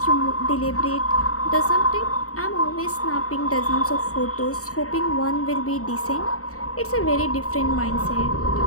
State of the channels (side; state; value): right; late; 0.65 ms